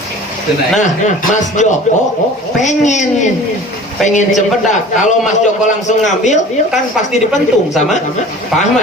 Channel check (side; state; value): both; normal; correlation 0.43